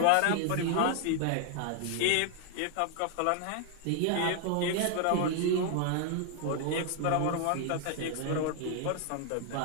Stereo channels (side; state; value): both; different; correlation 0.00